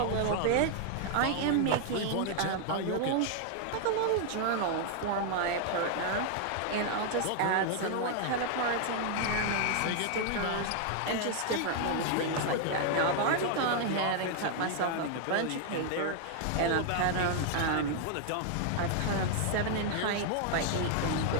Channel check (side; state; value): both; different; correlation 0.00